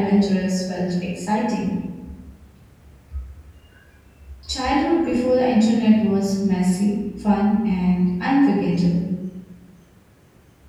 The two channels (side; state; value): both; identical; correlation 1.00